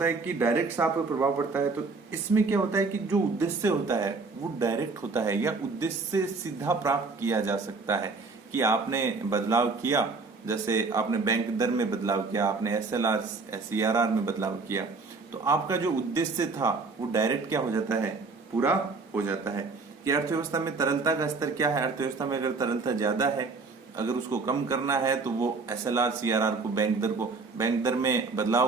है कि डायरेक्ट साख पर प्रभाव पड़ता है। तो इसमें क्या होता है कि जो उद्देश्य होता है वो डायरेक्ट होता है या उद्देश्य से सीधा प्राप्त किया जा सकता है। कि आपने बदलाव किया, जैसे आपने बैंक दर में बदलाव किया, आपने एसएलआर सीआरआर में बदलाव किया, तो आपका जो उद्देश्य था वो डायरेक्ट क्या हो जाता है, पूरा हो जाता है। कि अर्थव्यवस्था में तरलता का स्तर क्या है, अर्थव्यवस्था में अगर तरलता ज्यादा है, अगर उसको कम करना है तो वो एसएलआर सीआरआर को बैंक दर में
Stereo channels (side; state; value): left; quieter; 4.1 dB